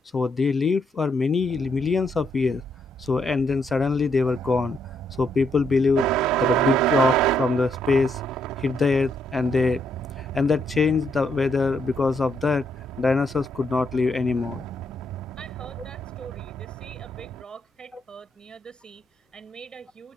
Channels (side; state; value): both; normal; correlation 0.75